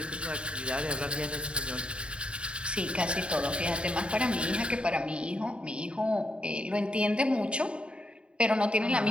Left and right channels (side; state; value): left; late; 0.055 ms